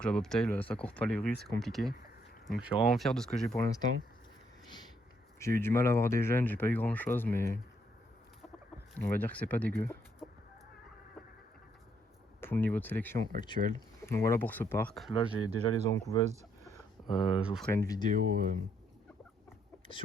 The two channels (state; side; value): normal; both; correlation 0.72